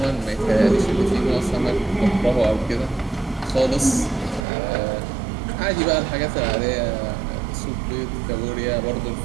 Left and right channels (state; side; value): drops out; left; at 4.5 s